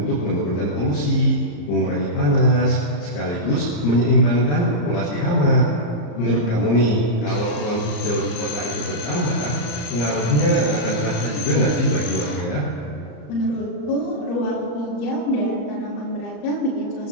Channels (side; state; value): right; late; 34 ms